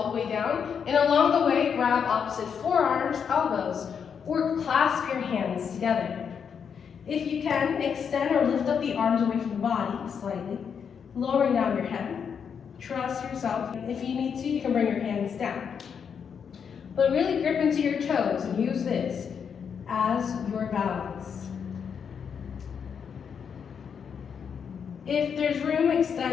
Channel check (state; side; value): quieter; right; 7.0 dB